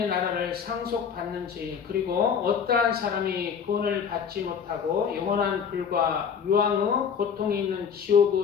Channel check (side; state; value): right; quieter; 7.0 dB